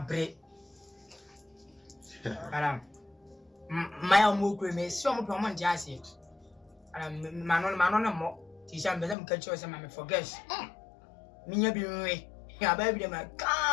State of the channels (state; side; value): drops out; right; at 9.2 s